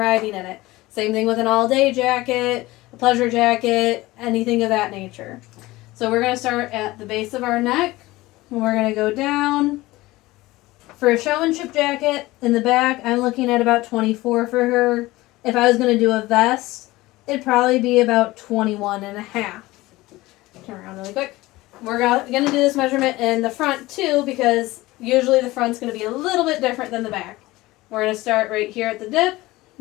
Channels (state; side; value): quieter; right; 19.2 dB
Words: in it. Same thing with an all-day jacket, a pleasure jacket, anything of that nature. So we're going to start at the base of our neck, and we're going to go down. For a showmanship jacket, in the back, I'm looking at about 24 for her. If I was going to do a vest, it'd probably be about 21 1/2. Turn around really quick. We're going to do this measurement in the front too because usually the front's going to be a little bit different than the back. We're going to start right here at the dip